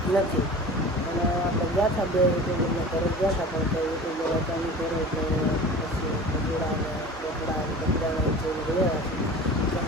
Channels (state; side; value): normal; both; correlation 0.38